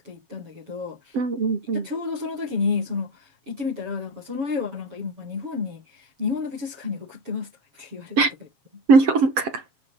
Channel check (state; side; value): late; left; 7.7 ms